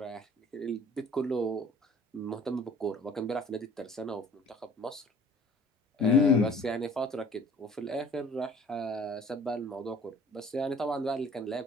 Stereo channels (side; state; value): both; normal; correlation 0.51